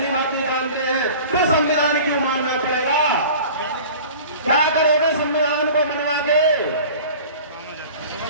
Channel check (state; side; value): inverted; both; correlation -0.41